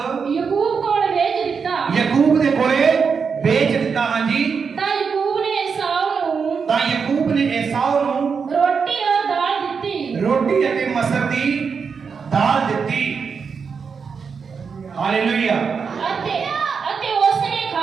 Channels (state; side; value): quieter; left; 5.8 dB